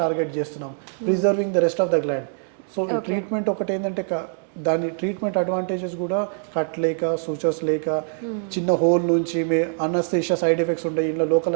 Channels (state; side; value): silent; left; 63 dB below the other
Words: చేస్తున్నాం, preserving the rest of the gland. So ఈ ట్రీట్మెంట్ ఒకటి ఏంటంటే దాని ట్రీట్మెంట్ అడ్వాంటేజెస్ కూడా కట్ లేక, సూచర్స్ లేక, చిన్న హోల్ నుంచి అనస్థీషియా సైడ్ ఎఫెక్ట్స్ ఉంటాయి. ఇంట్లో